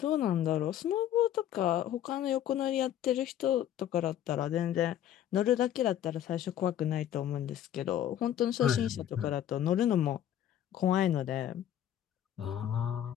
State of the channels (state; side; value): quieter; right; 11.0 dB